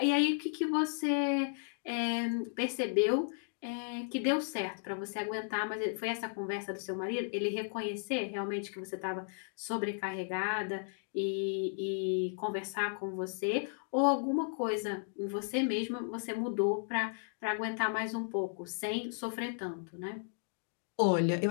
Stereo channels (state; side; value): silent; right; digital silence